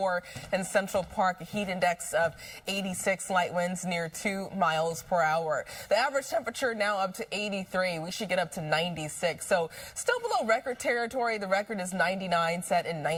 in Central Park, a heat index of 86, light winds near 2 miles per hour. The average temperature now up to 83. We should get up to 96. So still below record territory. The record is 99, set in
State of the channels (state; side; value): identical; both; correlation 1.00